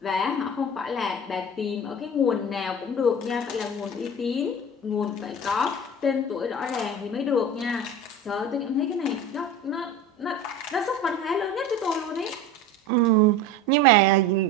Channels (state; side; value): normal; both; correlation 0.34